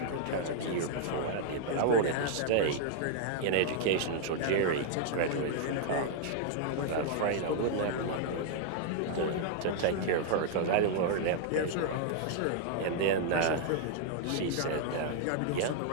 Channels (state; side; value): different; both; correlation -0.01